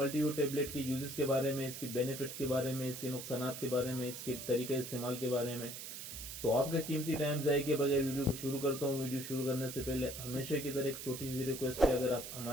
टेबलेट के यूजेस के बारे में, इसकी बेनिफिट्स के बारे में, इसके नुकसानात के बारे में, इसके तरीके इस्तेमाल के बारे में। तो आपका कीमती टाइम ज़ाया किए बगैर वीडियो को शुरू करता हूँ। वीडियो शुरू करने से पहले हमेशा की तरह एक छोटी सी रिक्वेस्ट है, अगर आप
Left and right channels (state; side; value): noise; right; hiss, 8 dB below the sound